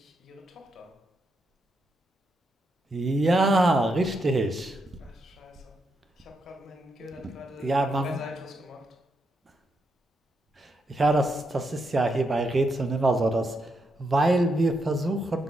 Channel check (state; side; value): normal; both; correlation 0.81